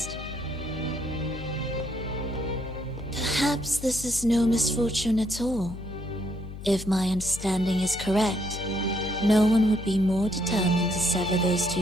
Perhaps this is no misfortune at all. If my understanding is correct, no one would be more determined to sever those two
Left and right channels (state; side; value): noise; left; hum, 11 dB below the sound